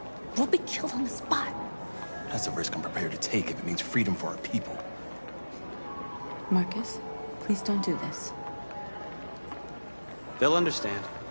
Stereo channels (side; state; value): both; inverted; correlation -1.00